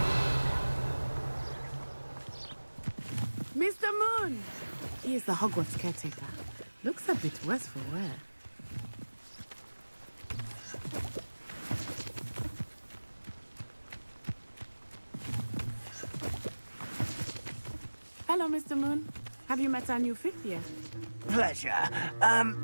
Mr. Moon! He is the Hogwarts caretaker. Looks a bit worse for wear. Hello, Mr. Moon. Have you met our new fifth year? Pleasure.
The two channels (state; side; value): inverted; both; correlation -1.00